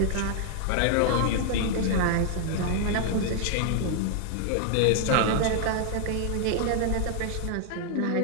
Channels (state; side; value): different; both; correlation 0.00